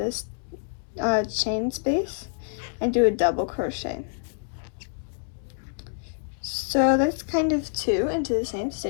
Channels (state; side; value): silent; right; digital silence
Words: chain space and do a double crochet. So that's kind of 2 into the same